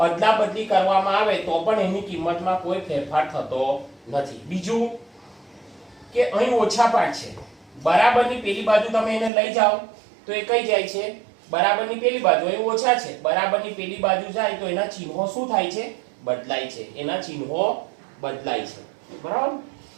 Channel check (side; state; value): left; drops out; at 9.3 s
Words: બદલી કરવામાં આવે તો પણ એની કિંમતમાં કોઈ ફેરફાર થતો નથી. બીજું કે અહીં ઓછા પાઠ છે. બરાબરની પેલી બાજુ તમે એને લઈ જાઓ તો એ કઈ જાય છે? બરાબરની પેલી બાજુ. અહીં ઓછા છે, બરાબરની પેલી બાજુ જાય તો એના ચિહ્નો શું થાય છે? બદલાય છે. એના ચિહ્નો બદલાય છે. બરાબર,